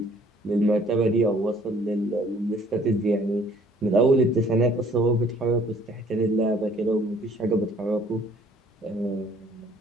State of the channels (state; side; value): normal; both; correlation 0.58